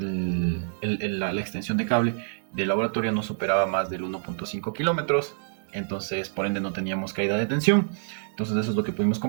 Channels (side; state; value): left; silent; 60 dB below the other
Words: la extensión de cable del laboratorio no superaba más del 1.5 kilómetros. Entonces, por ende, no teníamos caída de tensión. Entonces, eso es lo que pudimos